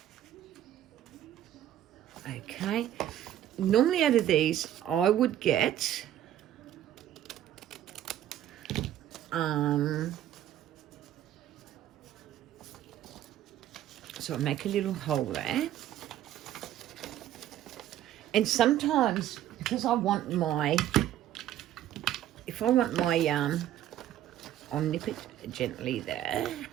Okay. Normally out of these, I would get... So I make a little hole there. And sometimes, because I want my... If I want my... I'll nip it gently there.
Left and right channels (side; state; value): left; quieter; 12.0 dB